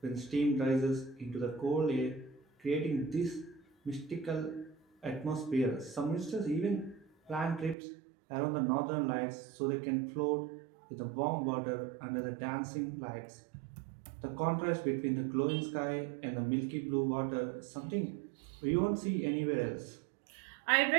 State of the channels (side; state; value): left; drops out; at 7.8 s